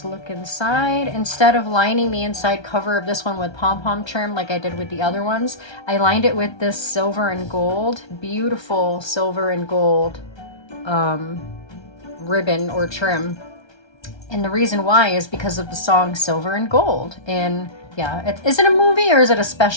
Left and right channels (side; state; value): right; late; 1.3 ms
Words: look inside. Instead of lining the inside cover of this one with pom-pom trim like I did with the other ones, I lined it with this silver and gold, beautiful silver and gold ribbon or trim. And the reason why is because of the song Silver and Gold. And yeah, is it a movie or is it a